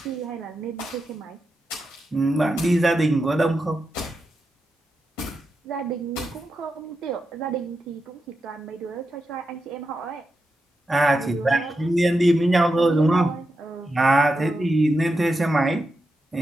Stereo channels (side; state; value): both; normal; correlation 0.88